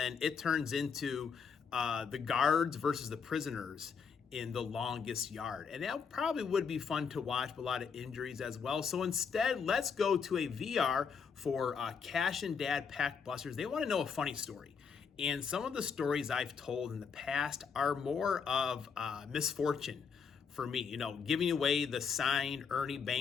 it turns into the guards versus the prisoners in the longest yard. And that probably would be fun to watch, but a lot of injuries as well. So instead, let's go to a VR for Cash and Dad Pack Busters. They want to know a funny story. And some of the stories I've told in the past are more of misfortune for me. Giving away the signed Ernie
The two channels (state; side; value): quieter; right; 6.1 dB